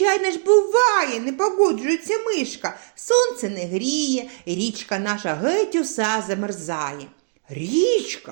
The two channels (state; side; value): silent; left; digital silence